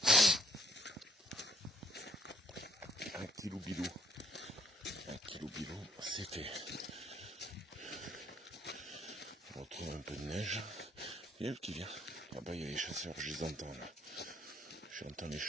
Un kilo bilou. Un kilo bilou, c'est fait. On retrouve un peu de neige. Il y a le qui vient. Là-bas, il y a les chasseurs, je les entends là. J'entends les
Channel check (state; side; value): normal; both; correlation 0.65